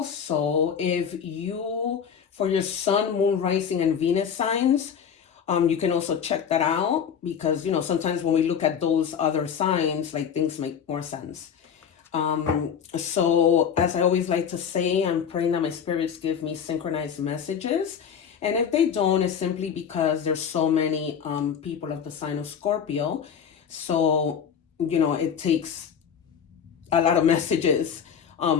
if you, for your sun, moon, rising, and Venus signs, you can also check that out because, sometimes when we look at those other signs, like things make more sense. So as I always like to say, I'm praying that my spirits give me synchronized messages. And if they don't, it's simply because there's so many people of the sign of Scorpio. So, it takes a lot of messages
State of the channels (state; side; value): quieter; right; 7.6 dB